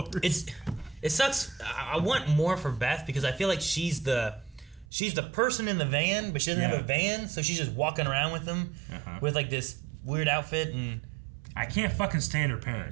It sucks. I want more for Beth, because I feel like she's the person in the van, but she doesn't have a van, so she's just walking around with them with, like, this weird outfit, and... I can't fucking stand her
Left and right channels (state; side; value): drops out; left; at 4.9 s